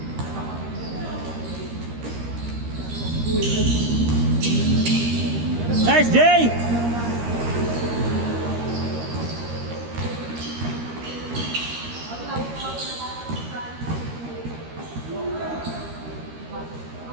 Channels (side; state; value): left; late; 13 ms